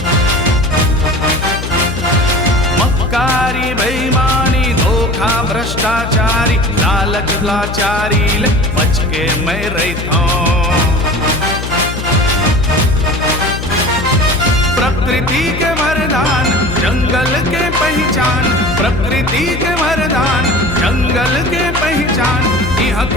मक्कारी बेईमानी धोखा भ्रष्टाचारी लालच लाचारी ले बच के मैं रहितो। प्रकृति के वरदान जंगल के पहचान, प्रकृति के वरदान जंगल के पहचान, यहाँ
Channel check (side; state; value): left; noise; hum, 7 dB below the sound